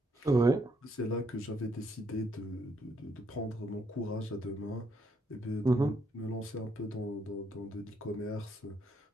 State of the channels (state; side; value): normal; both; correlation 0.74